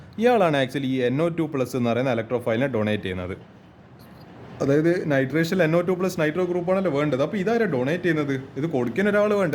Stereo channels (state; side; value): identical; both; correlation 1.00